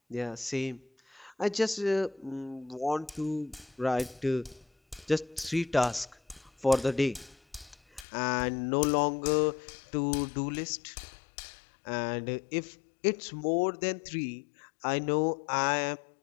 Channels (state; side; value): drops out; right; at 8.1 s